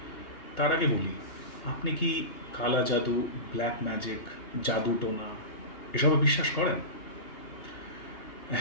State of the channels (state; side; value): late; right; 2.8 ms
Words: তার আগে বলি, আপনি কি কালা জাদু, ব্ল্যাক ম্যাজিক, জাদু টোনা এসবে বিশ্বাস করেন?